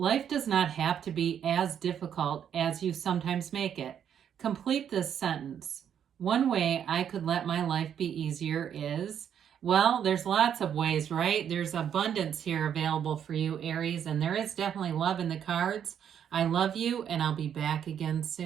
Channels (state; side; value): quieter; left; 8.8 dB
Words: does not have to be as difficult as you sometimes make it. Complete this sentence. One way I could let my life be easier is, well, there's lots of ways, right? There's abundance here available for you, Aries, and there is definitely love in the cards. I love you, and I'll be back again